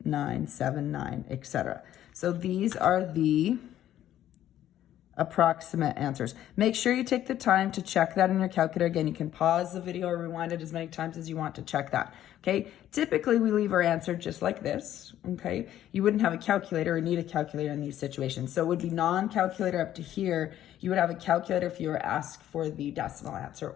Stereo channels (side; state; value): right; quieter; 12.0 dB